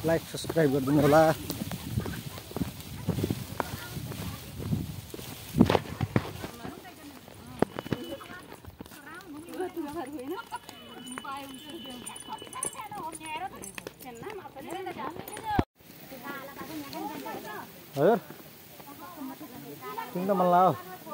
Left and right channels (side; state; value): both; identical; correlation 1.00